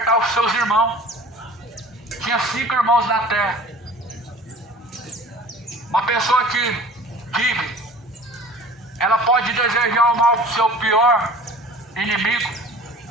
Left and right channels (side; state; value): both; normal; correlation 0.44